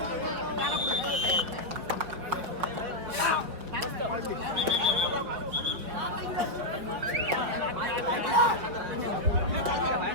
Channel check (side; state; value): left; late; 5.4 ms